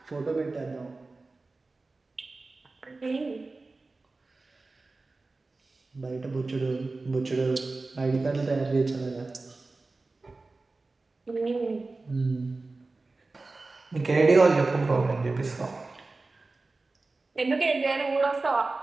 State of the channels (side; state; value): left; quieter; 3.5 dB